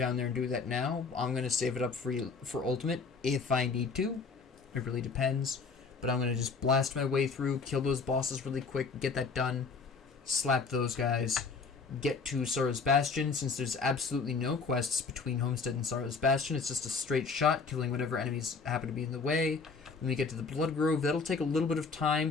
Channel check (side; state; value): right; quieter; 4.7 dB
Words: there and do that now. I'm going to save it up for Ultimate if I need to. It really depends. But I'm going to just blast my way through, kill those bosses really quick, get that done, slap those guys, get to Sorrow's Bastion. Since there's absolutely no quests between Homestead and Sorrow's Bastion, it's just a straight shot, killing whatever enemies happen to be in the way. When we get to the Blood Grove, that'll take a little bit of time,